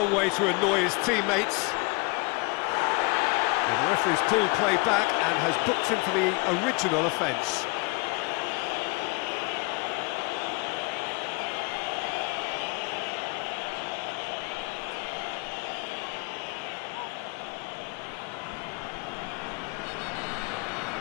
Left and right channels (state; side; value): quieter; right; 28.8 dB